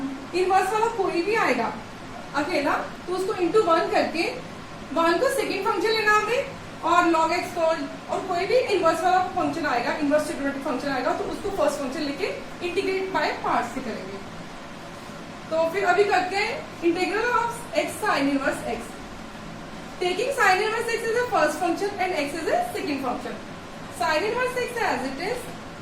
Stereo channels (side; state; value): both; identical; correlation 1.00